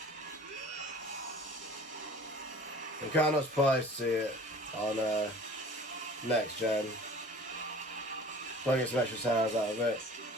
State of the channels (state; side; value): normal; both; correlation 0.45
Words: I'm kind of surprised to see it on next gen. Try to get some extra sounds out of it.